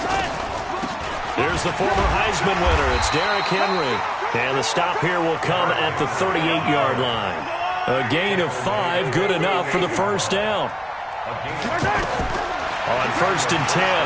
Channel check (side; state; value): both; identical; correlation 1.00